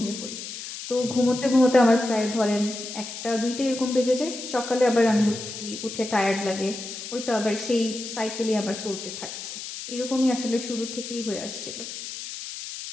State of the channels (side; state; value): left; noise; hiss, 9 dB below the sound